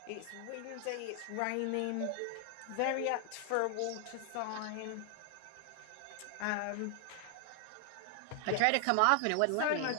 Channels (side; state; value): both; different; correlation 0.00